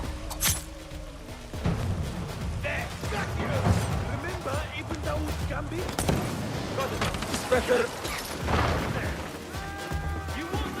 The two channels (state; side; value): identical; both; correlation 1.00